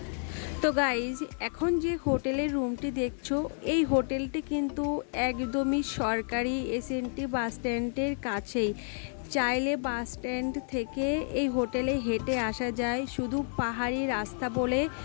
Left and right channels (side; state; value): right; silent; 58 dB below the other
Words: তো গাইজ, এখন যে হোটেলের রুমটি দেখছো, এই হোটেলটি কিন্তু একদমই সরকারি এসএনটি বাস স্ট্যান্ডের কাছেই। চাইলে বাস স্ট্যান্ড থেকে এই হোটেলে হেঁটে আসা যায়, শুধু পাহাড়ি রাস্তা বলে